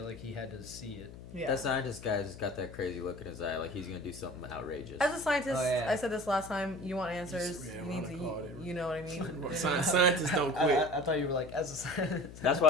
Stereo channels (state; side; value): noise; left; hum, 15 dB below the sound